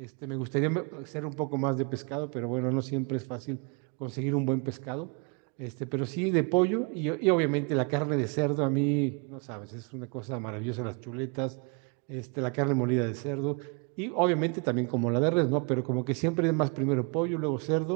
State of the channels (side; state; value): left; quieter; 34.3 dB